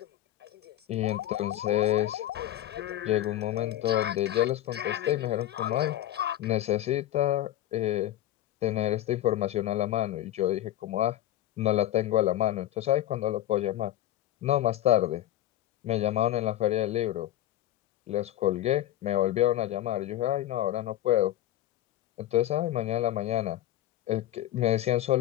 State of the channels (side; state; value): right; quieter; 13.5 dB